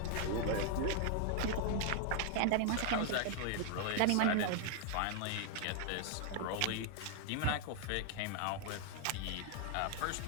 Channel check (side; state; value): both; different; correlation 0.00